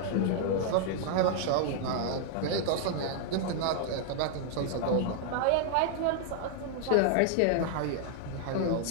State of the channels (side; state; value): both; different; correlation 0.00